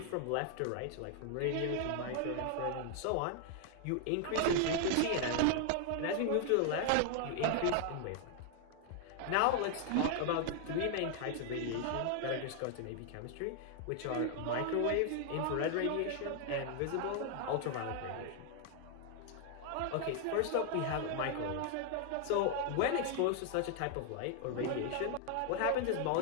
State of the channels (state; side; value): different; both; correlation 0.00